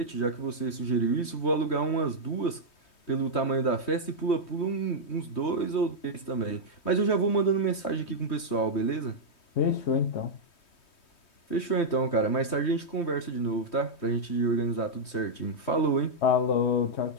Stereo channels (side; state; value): right; late; 3.2 ms